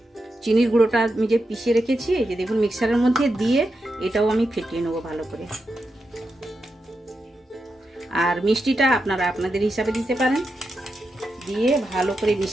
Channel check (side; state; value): both; normal; correlation 0.87